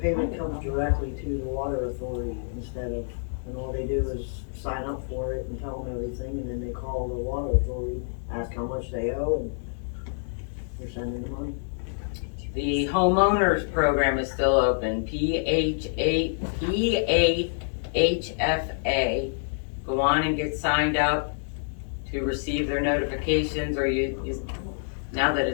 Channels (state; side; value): silent; right; digital silence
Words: comes directly to the water authority instead of, and all they do is sign up for it and tell them everything, and then they call the water authority, ask how much they owe, and they're sending the money. The Homeowners Program is still open, PHFA. Go on and get signed up to receive their notifications, or now that